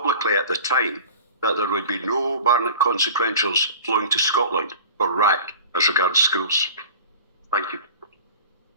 at the time that there would be no Barnett consequentials flowing to Scotland for RAC as regards schools. Thank you.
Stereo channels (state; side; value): inverted; both; correlation -0.38